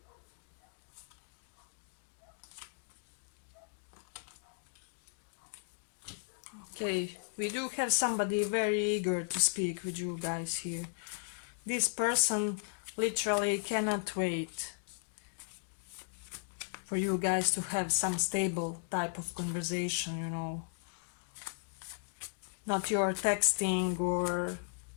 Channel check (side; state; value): right; silent; digital silence